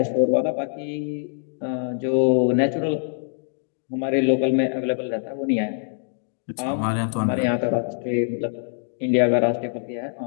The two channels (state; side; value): silent; right; digital silence